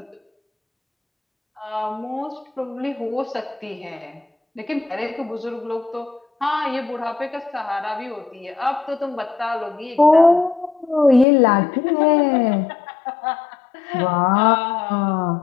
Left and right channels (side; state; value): right; drops out; at 11.2 s